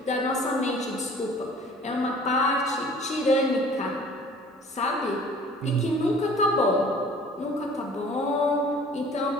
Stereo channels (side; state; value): both; normal; correlation 0.49